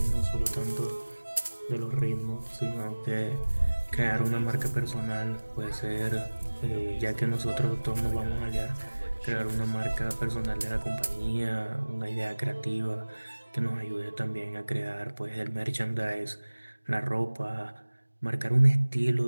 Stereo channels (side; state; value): both; inverted; correlation -1.00